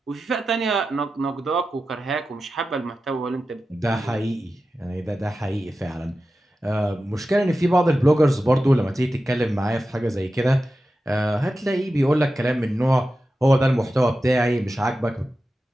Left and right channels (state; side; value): normal; both; correlation 0.93